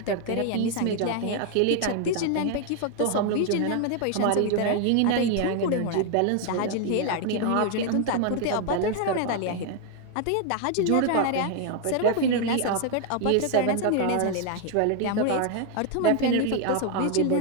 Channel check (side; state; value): both; different; correlation 0.00